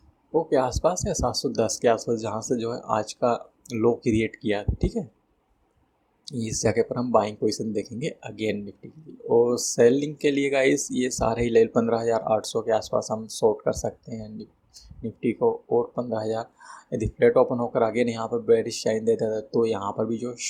वो के आसपास या 710 के आसपास, जहाँ से जो है आज का लो क्रिएट किया था. ठीक है, इस जगह पर हम बाइंग पोजीशन देखेंगे अगेन निफ्टी के लिए. और सेलिंग के लिए गाइस ये सारे ही लेवल 15,800 के आसपास हम शॉर्ट कर सकते हैं निफ्टी को. और 15,000 यदि फ्लैट ओपन होकर अगेन यहाँ पर बेरिश शाइन देता है तो यहाँ पर भी जो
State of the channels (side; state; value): both; identical; correlation 1.00